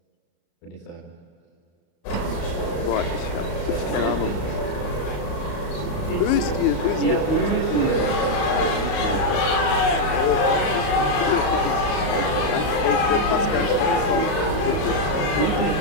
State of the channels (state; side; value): late; right; 35 ms